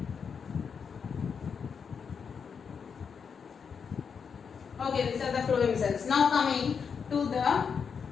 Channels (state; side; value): quieter; right; 6.3 dB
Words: Okay, these are the phloem cells. Now coming to the